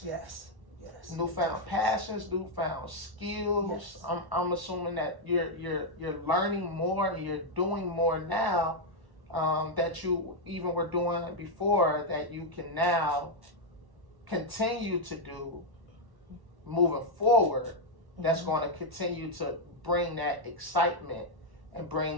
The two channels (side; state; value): left; late; 1.0 ms